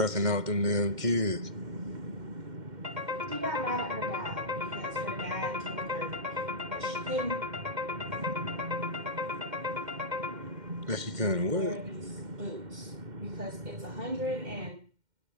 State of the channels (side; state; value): left; late; 2.1 ms